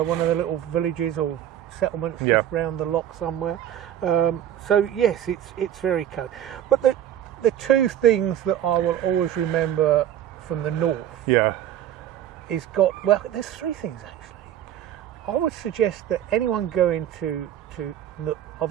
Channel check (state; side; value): quieter; left; 11.0 dB